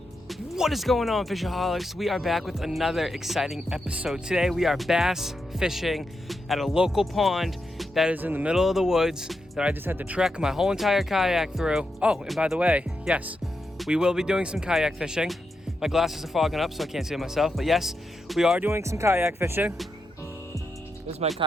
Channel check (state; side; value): normal; both; correlation 0.86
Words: What is going on, Fishaholics? We are back with another exciting episode. Today we are bass fishing at a local pond that is in the middle of the woods that I just had to trek my whole entire kayak through. Oh, and by the way, yes, we will be doing some kayak fishing. My glasses are fogging up so I can't see myself, but yes, we are doing some kayak fishing. This is my